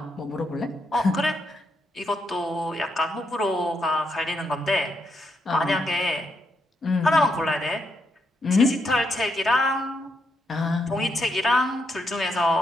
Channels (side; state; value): both; normal; correlation 0.79